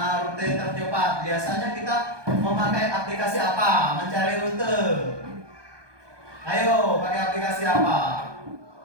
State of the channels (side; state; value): left; late; 1.2 ms